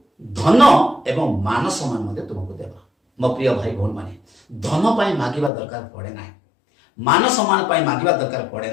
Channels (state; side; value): drops out; right; at 5.5 s